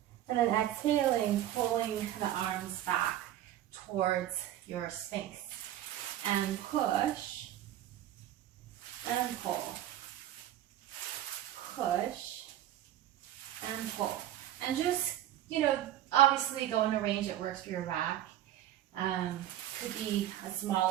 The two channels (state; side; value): quieter; left; 12.4 dB